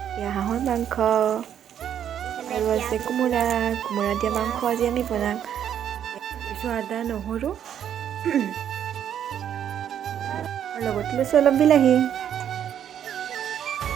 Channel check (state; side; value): quieter; left; 9.6 dB